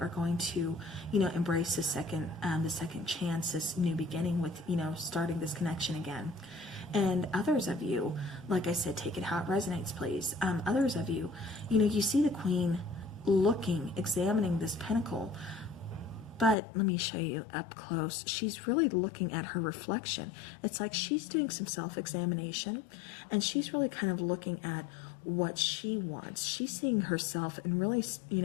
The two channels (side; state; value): right; drops out; at 16.6 s